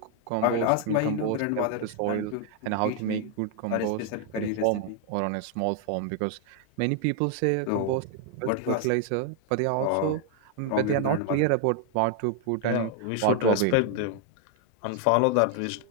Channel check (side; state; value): both; different; correlation 0.00